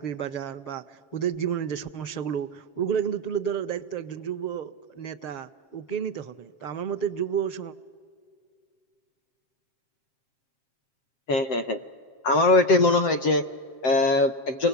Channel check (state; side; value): late; right; 7.4 ms